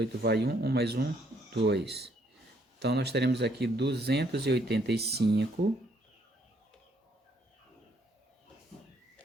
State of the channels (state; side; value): normal; both; correlation 0.68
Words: vai 1, 1 mais 1, 2. Então, nós teremos aqui 285,